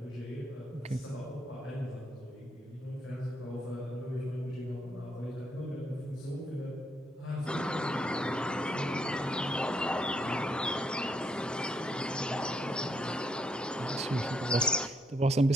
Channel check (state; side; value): normal; both; correlation 0.74